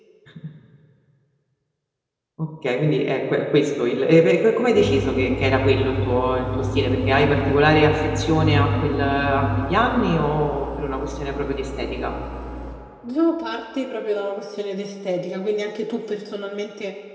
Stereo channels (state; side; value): identical; both; correlation 1.00